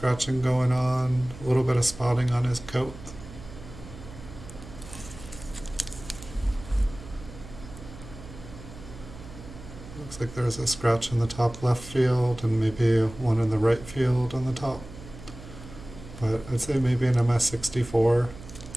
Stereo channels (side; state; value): right; noise; hum, 15 dB below the sound